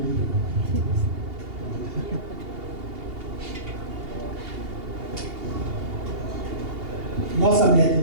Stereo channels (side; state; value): left; late; 2.8 ms